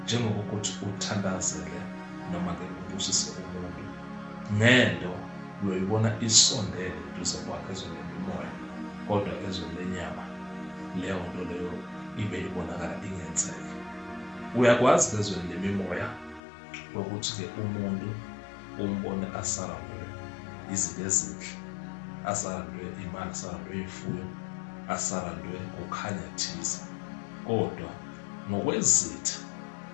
njengokuthi uthandazele noma ke ubusise umuntu ngento uyoyibona isondele duze kwakhe ezweni lemimoya, kodwa ezweni lenyama leyo nto leyo ibe ibonakala ingenzeki. Uyakwazi ezweni lemimoya ukuthi ke umuntu umbone asarandwe izinto ezinhle, asarandwe imali, asarandwe ifuyo, asarandwe ukukhanya thize, kodwa ngokwezitha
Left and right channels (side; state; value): right; drops out; at 16.4 s